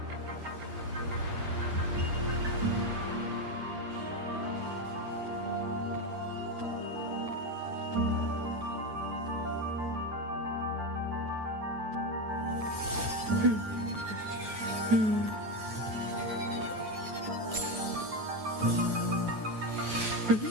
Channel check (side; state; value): left; late; 9.3 ms